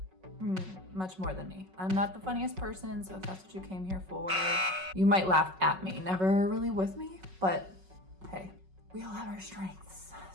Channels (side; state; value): left; late; 5.4 ms